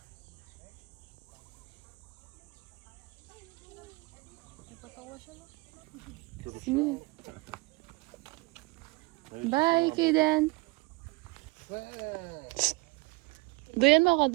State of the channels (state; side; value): quieter; left; 25.0 dB